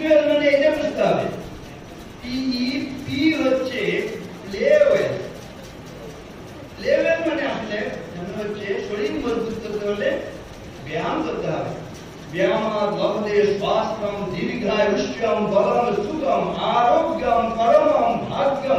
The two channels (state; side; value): identical; both; correlation 1.00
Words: মানে এটা বুঝতে হবে। পি হচ্ছে প্লেওয়েল। প্লেওয়েল মানে আসলে হচ্ছে শরীর মজবুত করতে হলে ব্যায়াম করতে হবে। ব্যায়াম লভতে স্বাস্থ্যম দীর্ঘায়ুষ্যম বলম সুখম আরোগ্যম পরমম